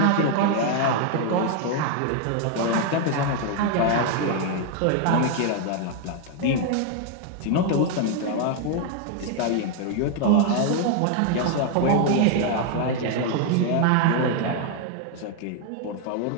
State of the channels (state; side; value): different; both; correlation 0.00